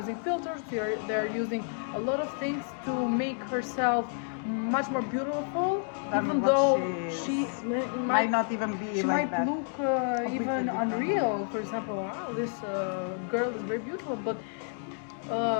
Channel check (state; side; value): silent; right; 57 dB below the other